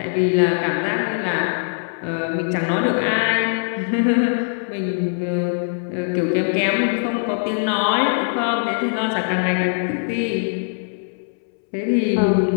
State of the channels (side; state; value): right; silent; 65 dB below the other